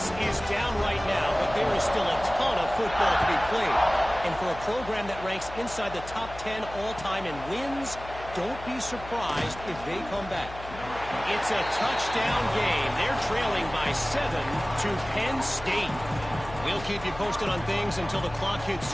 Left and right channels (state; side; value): noise; left; hum, 14 dB below the sound